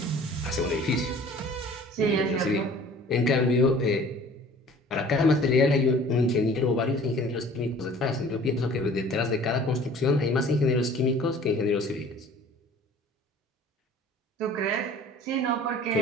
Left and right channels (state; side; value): normal; both; correlation 0.48